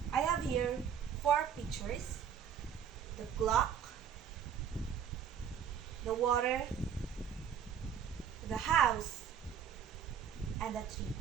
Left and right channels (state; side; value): quieter; left; 8.0 dB